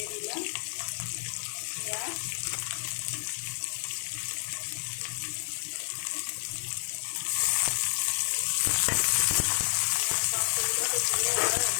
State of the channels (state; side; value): silent; right; digital silence